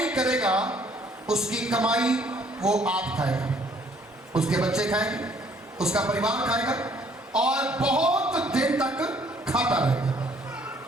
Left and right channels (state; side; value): normal; both; correlation 0.62